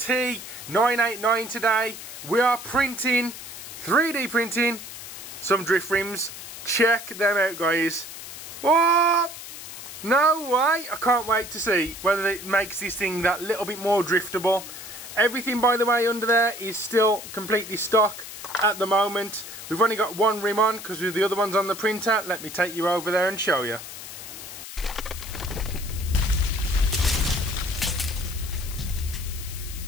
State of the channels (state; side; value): noise; left; hiss, 11 dB below the sound